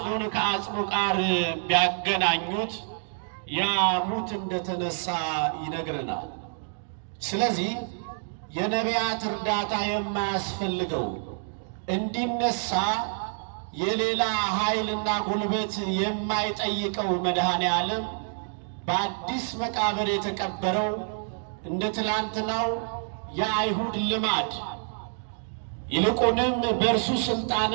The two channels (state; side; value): silent; left; digital silence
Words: ከአጽሙ ጋር ቢያገናኙት ያ ሙት እንደተነሳ ይነግረናል። ስለዚህ የነቢያት እርዳታ የማያስፈልገው እንዲነሳ የሌላ ኃይልና ጉልበት የማይጠይቀው መድኃኔ ዓለም በአዲስ መቃብር የተቀበረው እንደ ትላንትናው የአይሁድ ልማድ ይልቁንም በእርሱ